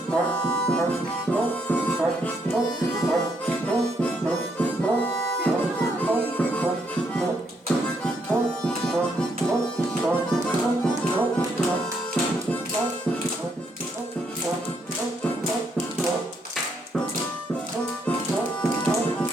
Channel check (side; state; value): both; normal; correlation 0.74